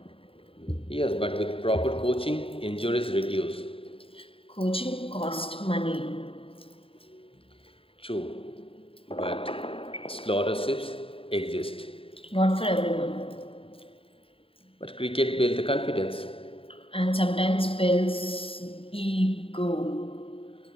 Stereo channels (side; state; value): right; late; 0.27 ms